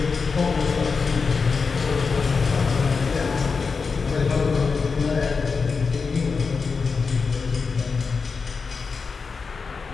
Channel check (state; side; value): quieter; right; 5.0 dB